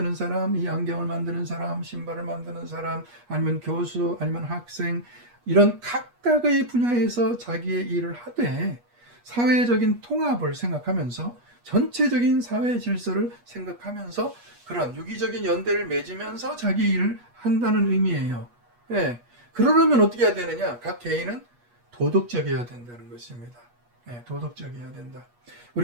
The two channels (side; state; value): left; late; 8.3 ms